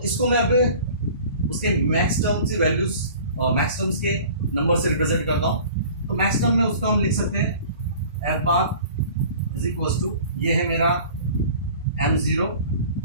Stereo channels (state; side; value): inverted; both; correlation -0.45